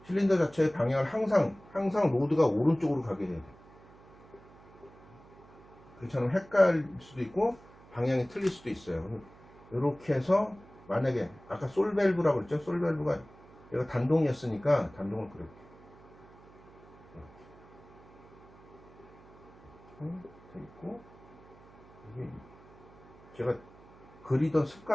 실린더 자체의 방향을 항상 로드가 오른쪽으로 가게 돼야 돼. 그렇잖아요. 헷갈릴 수도 있고 방향이 틀릴 수도 있어요. 이렇게 해서 만약에 아까 솔 밸브라고 그랬죠? 솔 밸브가 얘가 단동이었으니까 단동을 그렸게. 돼 있고 이게 제가 그리던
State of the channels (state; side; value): noise; right; hum, 23 dB below the sound